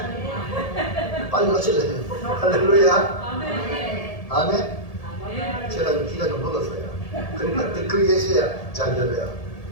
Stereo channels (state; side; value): late; right; 1.7 ms